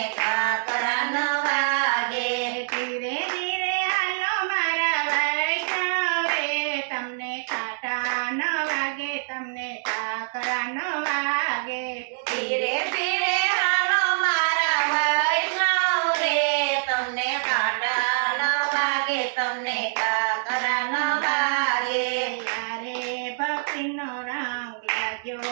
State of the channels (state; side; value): silent; left; digital silence